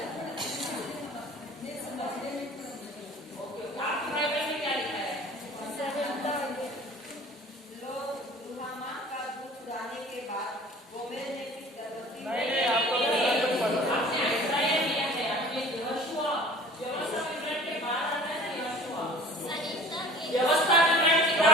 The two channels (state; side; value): normal; both; correlation 0.45